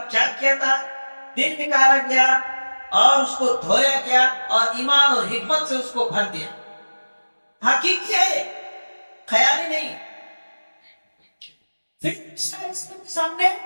چاک کیا تھا، دل نکالا گیا اور اس کو دھویا گیا اور ایمان اور حکمت سے اس کو بھر دیا. حقیقی ہے، خیالی نہیں. پھر کے سامنے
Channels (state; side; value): inverted; both; correlation -1.00